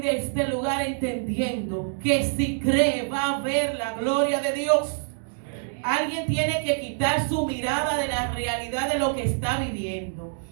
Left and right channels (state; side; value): silent; left; 61 dB below the other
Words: de este lugar entendiendo que si cree va a ver la gloria de Dios. Alguien tiene que quitar su mirada de la realidad de lo que está viviendo,